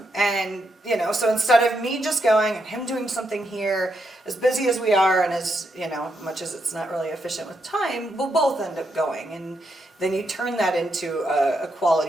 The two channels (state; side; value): normal; both; correlation 0.81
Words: so instead of me just going and him doing something here, as busy as we are and as, much as it's not really efficient with time, we'll both end up going. And then you turn that into a